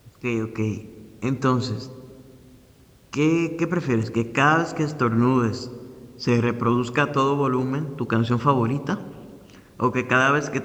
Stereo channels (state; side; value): identical; both; correlation 1.00